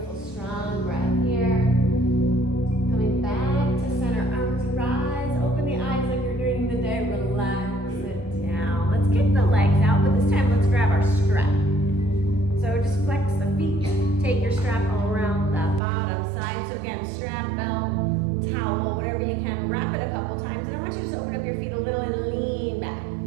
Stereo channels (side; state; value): left; drops out; at 15.8 s